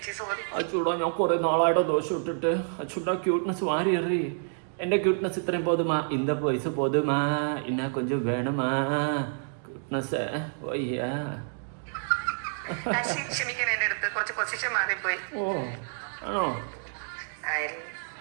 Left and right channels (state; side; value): silent; left; digital silence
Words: അച്ചൂടാ, ഞാൻ കുറെ നാളായിട്ടോ ദോശ ഇട്ടിട്ട്. അച്ചൂടാ, ക്യൂട്ട്നെസ് വാരി എറി. എൻ്റെ ക്യൂട്ട്നെസ് ഇത്രയും പോതുമാ, இந்த പൈസ പോതുമാ, ഇന്നാ കൊഞ്ചം വേണമാ ക്യൂട്ട്നെസ്. വയ്യാ, ഓ ആണോ?